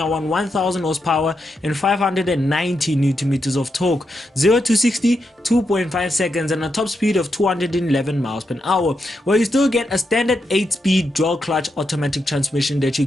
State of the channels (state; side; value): normal; both; correlation 0.84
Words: 1000 horsepower and 590 newton meters of torque. 0 to 60, 2.5 seconds, and a top speed of 211 miles per hour. Well, you still get a standard 8-speed dual clutch automatic transmission that you